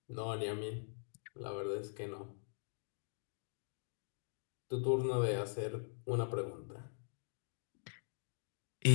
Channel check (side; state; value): right; silent; digital silence